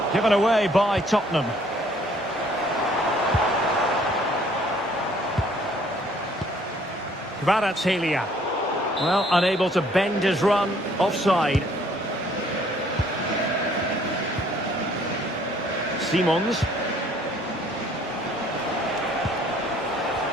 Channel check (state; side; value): normal; both; correlation 0.60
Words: Given away by Tottenham. Kvaratskhelia. Well, unable to bend his run. Offside. Simons.